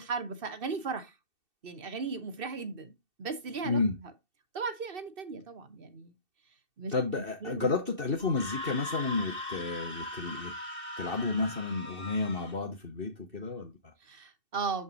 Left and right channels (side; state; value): left; late; 2.6 ms